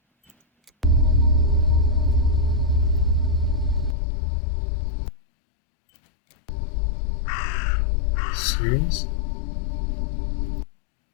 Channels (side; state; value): right; drops out; at 4.0 s